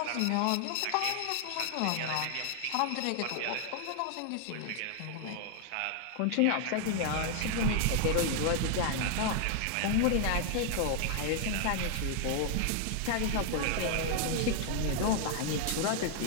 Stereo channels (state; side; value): different; both; correlation 0.00